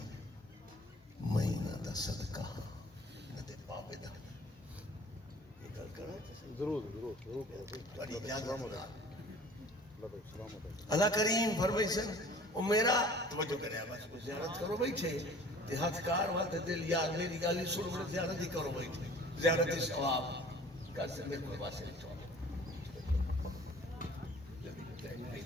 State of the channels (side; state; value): both; normal; correlation 0.48